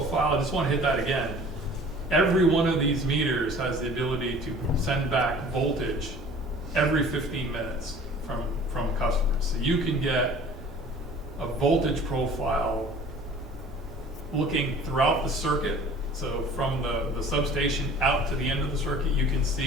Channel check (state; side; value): normal; both; correlation 0.47